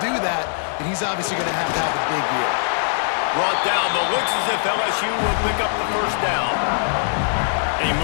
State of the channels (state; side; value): silent; right; digital silence